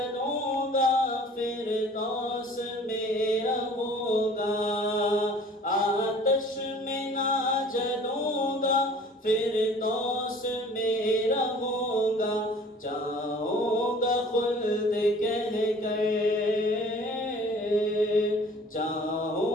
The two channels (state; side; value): normal; both; correlation 0.49